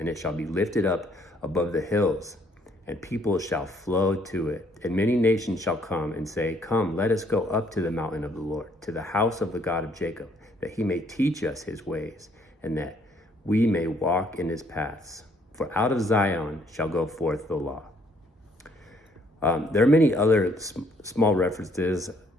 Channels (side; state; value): both; normal; correlation 0.66